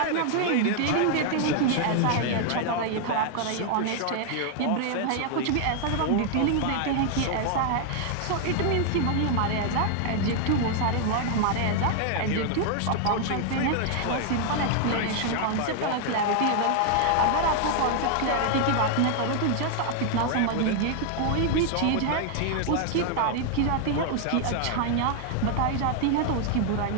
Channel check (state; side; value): different; both; correlation 0.00